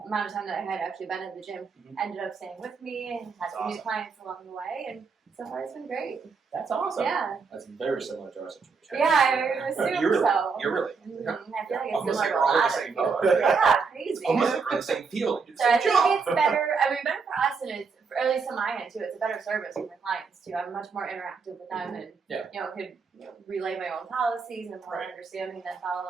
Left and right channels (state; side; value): quieter; left; 5.1 dB